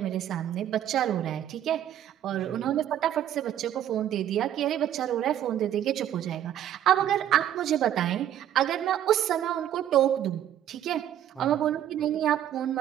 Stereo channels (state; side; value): quieter; left; 11.1 dB